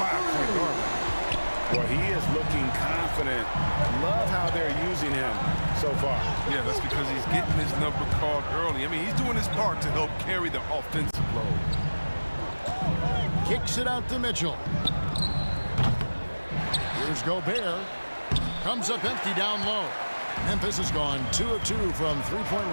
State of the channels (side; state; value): both; inverted; correlation -1.00